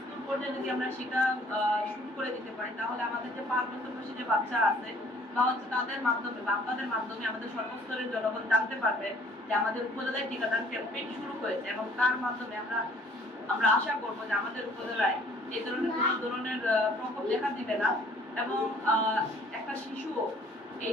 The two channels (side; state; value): both; normal; correlation 0.56